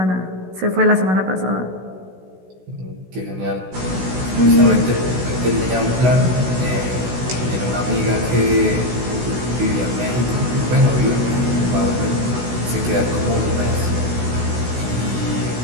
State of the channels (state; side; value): late; left; 16 ms